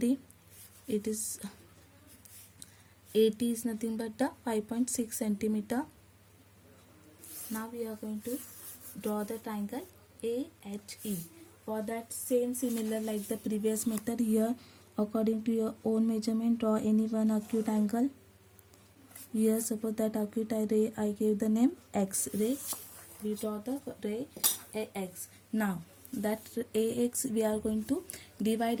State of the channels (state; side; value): identical; both; correlation 1.00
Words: It is AT is nothing but the 5.6 centimeter. Now we are going to draw the triangle AHE. For that same similar like the previous method, here according to your own measurement, draw any one acute angle. Here suppose that acute ray I gave the name X ray. We draw the ray AX. Now that AX we are going to